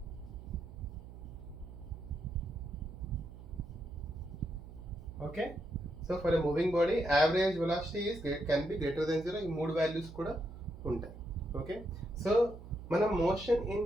Okay, so for a moving body average velocity can be greater than 0. ఈ మూడు వాల్యూస్ కూడా ఉంటాయి. ఓకే, సో మనం motion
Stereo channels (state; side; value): noise; right; hum, 14 dB below the sound